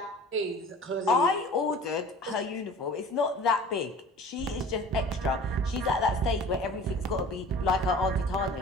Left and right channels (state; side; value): normal; both; correlation 0.44